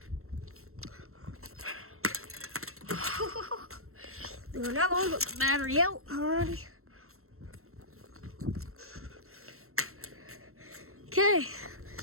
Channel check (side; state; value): left; late; 0.62 ms